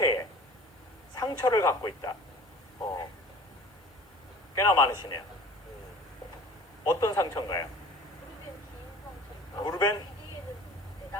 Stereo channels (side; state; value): both; normal; correlation 0.44